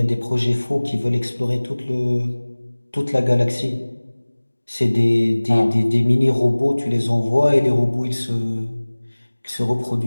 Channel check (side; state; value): both; inverted; correlation -1.00